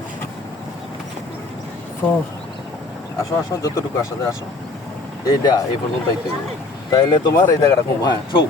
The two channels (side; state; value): right; quieter; 3.3 dB